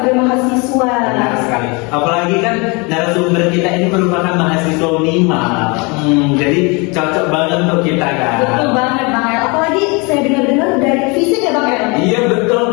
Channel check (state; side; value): quieter; right; 29.1 dB